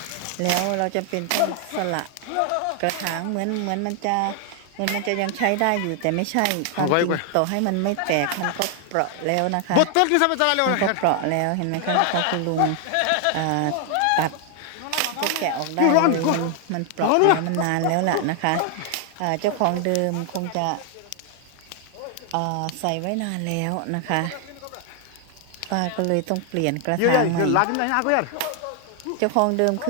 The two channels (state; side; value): different; both; correlation 0.00